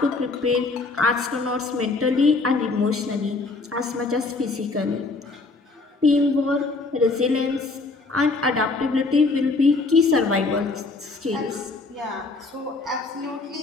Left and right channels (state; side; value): quieter; right; 3.7 dB